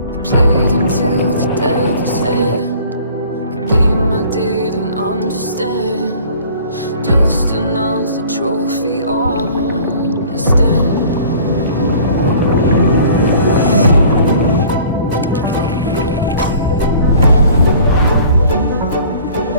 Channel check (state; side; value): inverted; both; correlation -0.50